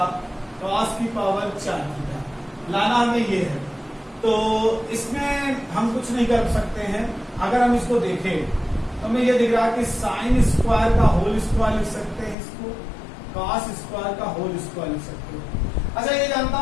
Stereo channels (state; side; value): drops out; right; at 12.4 s